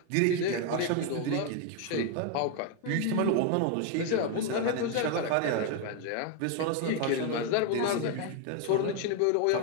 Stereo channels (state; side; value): different; both; correlation 0.01